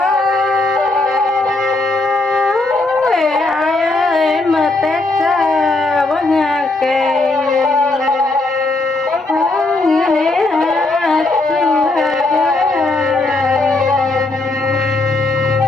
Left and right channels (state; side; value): quieter; right; 3.1 dB